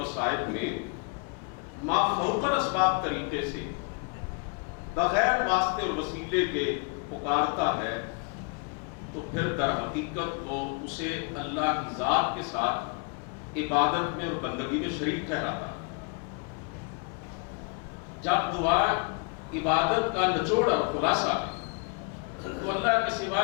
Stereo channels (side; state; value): right; quieter; 36.7 dB